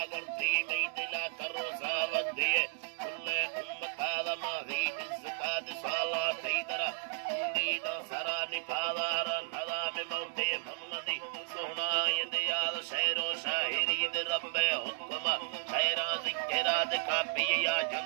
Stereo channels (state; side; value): silent; left; 55 dB below the other